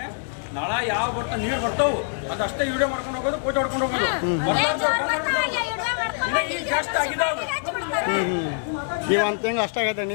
ನಾಳೆ ಯಾವ ಬರ್ತಾ ನೀರು ಬರ್ತಾವು ಅದಷ್ಟೇ ವಿಡಿಯೋ ಮಾಡ್ಕೊಂಡು ಹೋಗೋದು ಫೋಟೋ ಹೊಡ್ಕೊಂಡು ಹೋಗೋದು ಜಾಸ್ತಿ ಆಗಿದಾವ ಈಗ ಒಂದು ತಿಂಗಳು ಅಷ್ಟಾಗೈತೆ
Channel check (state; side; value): silent; right; digital silence